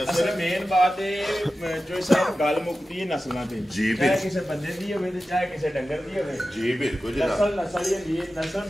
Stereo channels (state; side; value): normal; both; correlation 0.94